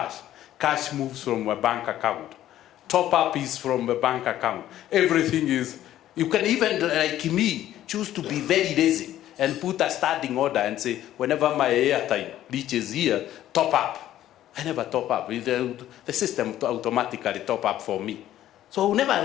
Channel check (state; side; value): quieter; right; 12.8 dB